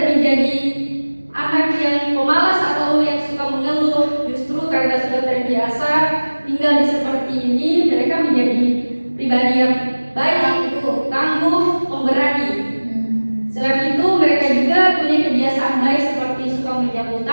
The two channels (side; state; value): both; inverted; correlation -1.00